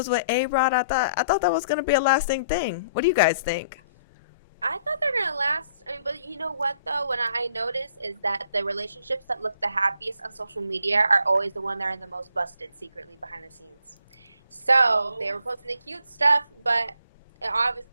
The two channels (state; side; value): inverted; both; correlation -0.64